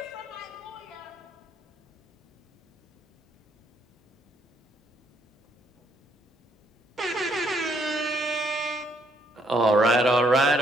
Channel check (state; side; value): normal; both; correlation 0.70